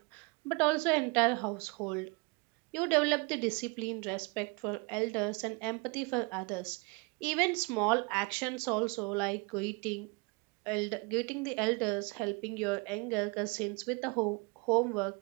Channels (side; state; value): left; quieter; 29.8 dB